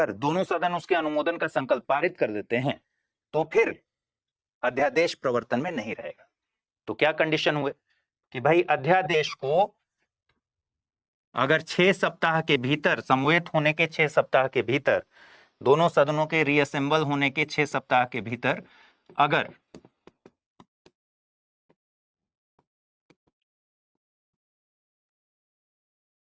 दोनों सदन उसके अनुमोदन का संकल्प पारित कर देते हैं तो फिर अध्यादेश प्रवर्तन में नहीं रहेगा। तो क्या कंडीशन हुए कि भाई अध्यादेश को अगर 6 सप्ताह के भीतर, समवेत होने के 6 सप्ताह के भीतर, दोनों सदनों के रीअसेंबल होने के 6 सप्ताह के भीतर अगर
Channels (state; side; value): identical; both; correlation 1.00